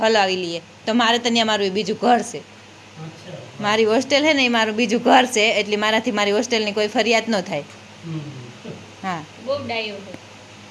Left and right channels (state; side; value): identical; both; correlation 1.00